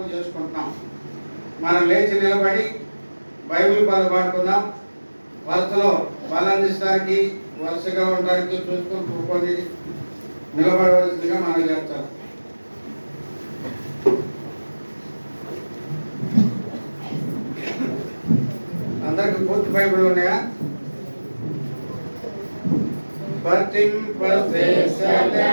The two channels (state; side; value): inverted; both; correlation -1.00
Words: చేసుకుంటున్నాం. మనం లేచి నిలబడి బైబిల్ పాడుకుందాం. వరుసలో బలాన్నిస్తానికి, వరుసగా ఉండడానికి చూసుకొని కూర్చొని నిలబడవలసిందిగా మనం చేస్తాం. అందరికి పూర్తి బైబిల్ ఉన్నాయా?